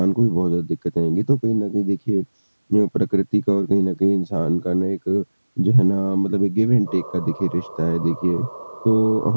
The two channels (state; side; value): inverted; both; correlation -1.00